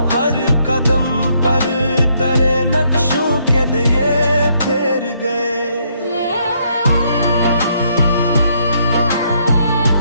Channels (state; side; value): inverted; both; correlation -0.72